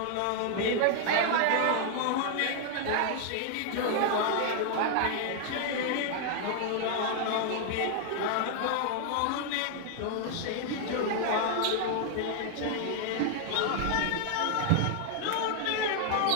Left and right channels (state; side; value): different; both; correlation 0.00